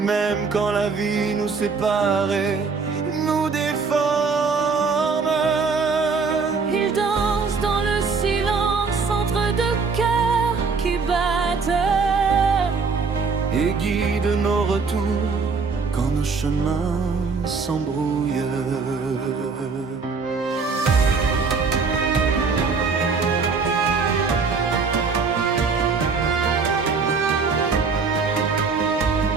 quand la vie nous séparait, nous déforme. Il danse dans le silence entre deux cœurs qui battent Et guide nos retours quand nos chemins s'embrouillent.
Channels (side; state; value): left; quieter; 4.8 dB